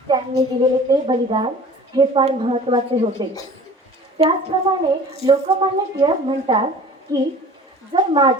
त्यांनी दिलेले ते बलिदान हे फार महत्त्वाचे होते. त्याचप्रमाणे लोकमान्य टिळक म्हणतात की जर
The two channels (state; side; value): normal; both; correlation 0.44